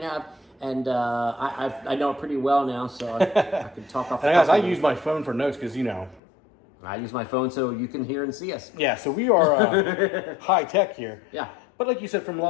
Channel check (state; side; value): drops out; right; at 6.2 s